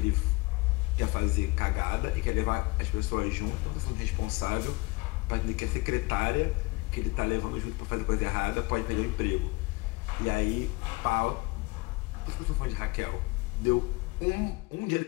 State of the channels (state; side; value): quieter; right; 24.3 dB